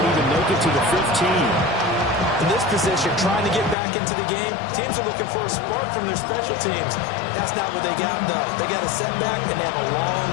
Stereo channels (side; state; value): right; drops out; at 3.8 s